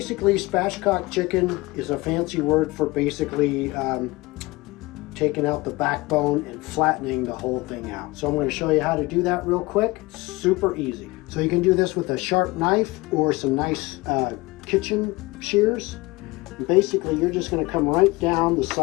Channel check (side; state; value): right; quieter; 22.0 dB